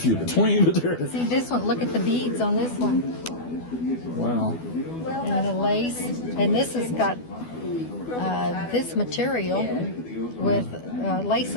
between, but they're, See this one, look at the beads on this one. wow. And the lace. And this has got this material with lace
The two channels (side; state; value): right; late; 12 ms